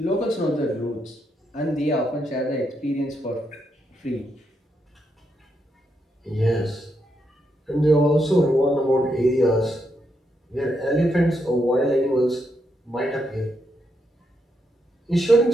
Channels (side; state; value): both; normal; correlation 0.80